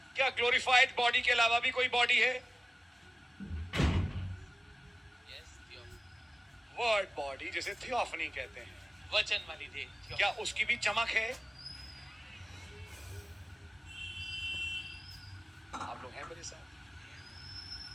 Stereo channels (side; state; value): both; normal; correlation 0.96